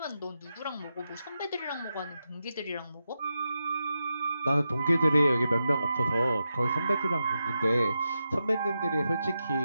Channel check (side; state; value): both; inverted; correlation -0.88